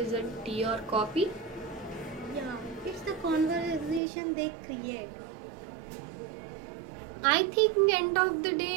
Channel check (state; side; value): drops out; left; at 4.0 s